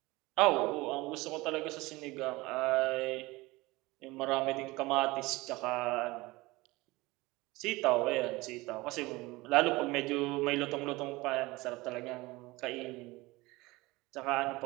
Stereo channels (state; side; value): quieter; left; 21.4 dB